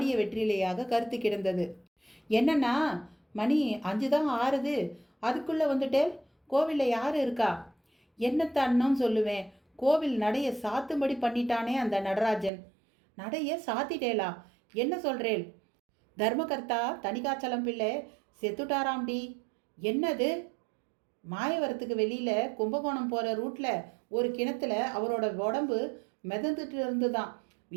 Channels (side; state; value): left; drops out; at 12.5 s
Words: வெற்றிலையாக கருத்து கிடந்தது. என்னன்னா, மணி 5 தான் ஆறுது, அதுக்குள்ளே வந்துட்டேன். கோவிலில் யார் இருக்கா? என்னத்தான்னு சொல்லுவேன். கோவில் நடைய சாத்தும்படி பண்ணிட்டானே அந்த நடராஜன். நடைய சாத்திட்டேலா? என்ன சொல்கிறேன்? தர்மகர்த்தா தணிகாச்சலம் பிள்ளை செத்துட்டாராம்டி. என்னது? மாயவரத்துக்கு வெளியில் கும்பகோணம் போகிற ரூட்டில் ஒரு கிணத்துல அவரோட உடம்பு மிதந்துட்டு இருந்துதான்.